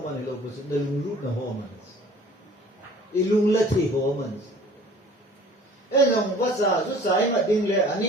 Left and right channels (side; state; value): both; normal; correlation 0.49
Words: ilo bus nalulud na homans ilunglat homans enong wasa susai ma dingle